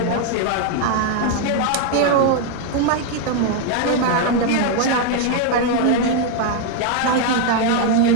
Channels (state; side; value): different; both; correlation 0.01